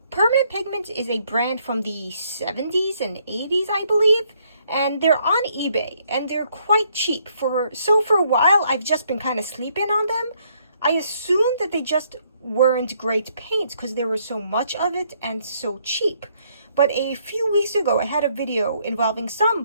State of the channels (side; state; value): both; inverted; correlation -0.69